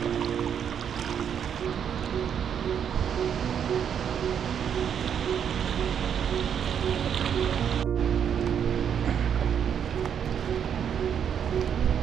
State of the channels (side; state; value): left; quieter; 8.3 dB